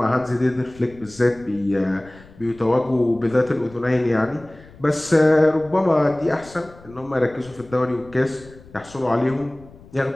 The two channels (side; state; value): left; noise; rumble, 22 dB below the sound